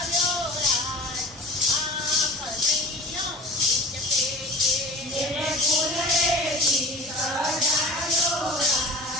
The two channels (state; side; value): normal; both; correlation 0.39